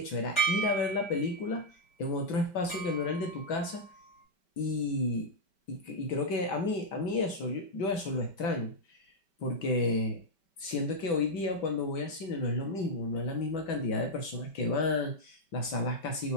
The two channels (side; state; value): right; late; 5.2 ms